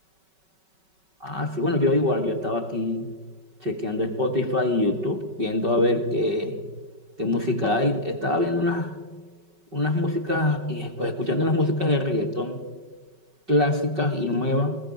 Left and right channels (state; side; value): late; left; 5.3 ms